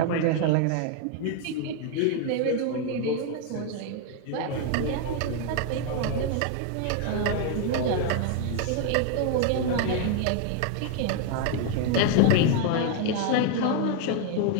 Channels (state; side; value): different; both; correlation 0.00